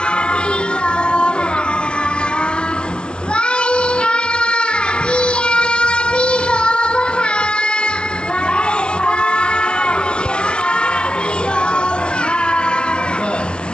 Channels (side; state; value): right; late; 0.049 ms